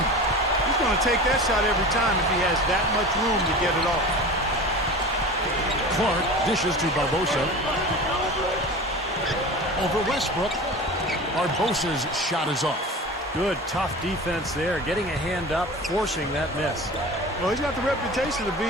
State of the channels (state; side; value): normal; both; correlation 0.34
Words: going to take that shot every time if he has that much room to get it off. Clark dishes to Barbosa. Over Westbrook. Barbosa's shot is off. Good, tough defense there. Getting a hand up, forcing that miss. Well, he's got the reputation of